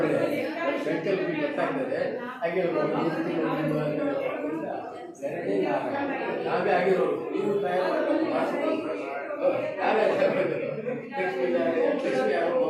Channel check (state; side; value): identical; both; correlation 1.00